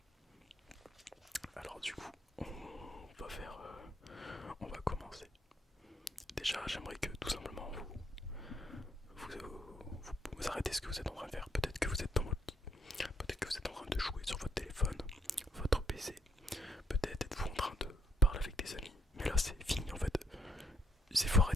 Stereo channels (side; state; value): both; normal; correlation 0.73